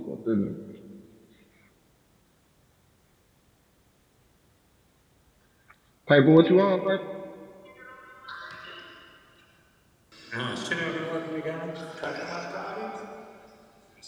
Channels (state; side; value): identical; both; correlation 1.00